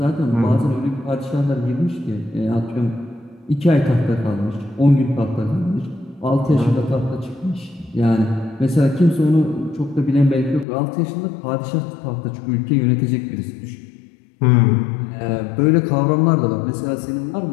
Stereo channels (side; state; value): right; drops out; at 10.7 s